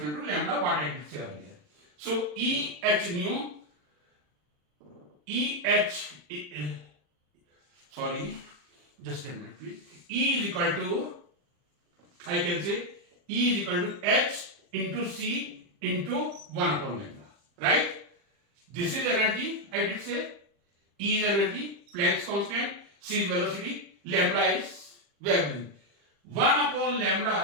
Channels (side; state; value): left; late; 40 ms